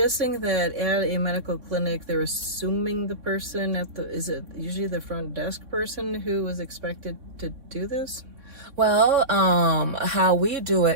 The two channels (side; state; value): left; late; 3.6 ms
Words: that at a medical clinic, they're assuming the person is it usually the front desk person who is expected to do this? Well, how we do